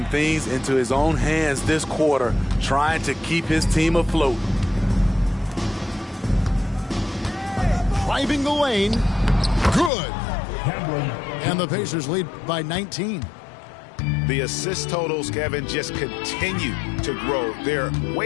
things into his own hands this quarter, trying to keep his team afloat. Driving the lane. Good. And the Pacers lead by 19. The assist totals, Kevin, just continue to grow. They're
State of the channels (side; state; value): right; drops out; at 9.9 s